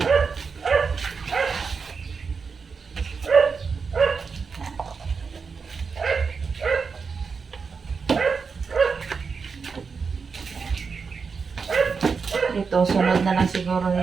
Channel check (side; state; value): left; quieter; 5.3 dB